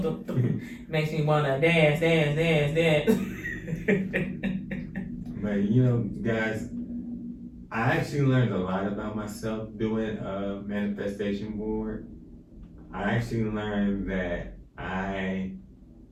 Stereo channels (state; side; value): identical; both; correlation 1.00